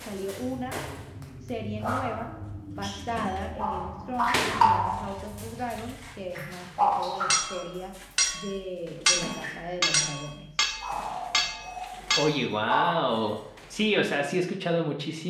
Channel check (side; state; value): both; identical; correlation 1.00